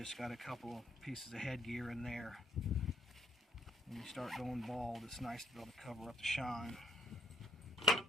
got a couple of pieces of headgear in there. When you start going bald, it's nice to be able to cover up the shine.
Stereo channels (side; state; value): both; normal; correlation 0.66